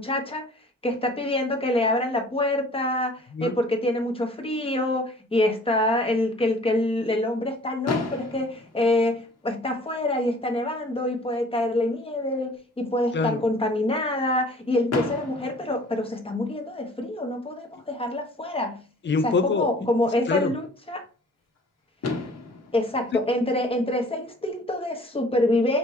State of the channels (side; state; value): both; normal; correlation 0.51